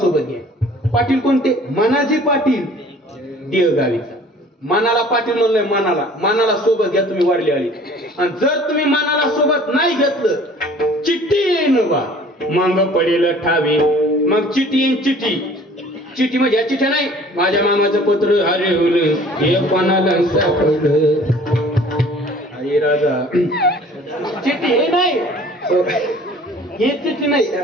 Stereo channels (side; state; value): both; normal; correlation 0.50